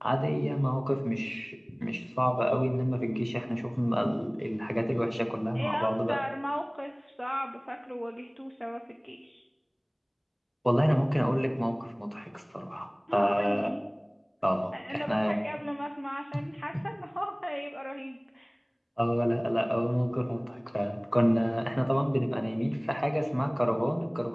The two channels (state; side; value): identical; both; correlation 1.00